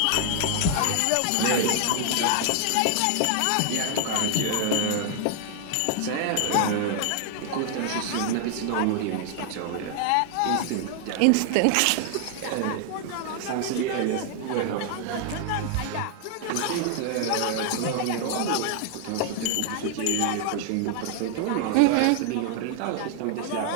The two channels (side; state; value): both; different; correlation 0.00